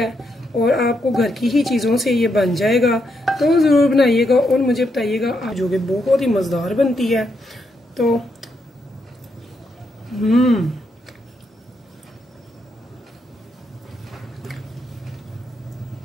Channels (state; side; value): normal; both; correlation 0.80